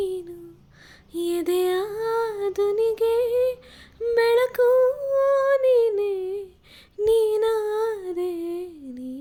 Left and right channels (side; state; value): both; identical; correlation 1.00